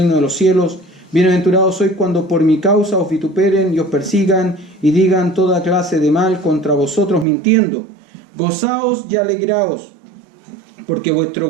de los cielos. Bienaventurados sois cuando por mi causa os vituperen y os persigan y digan toda clase de mal contra vosotros mintiendo. Gozaos y alegraos, porque vuestro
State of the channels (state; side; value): drops out; left; at 7.2 s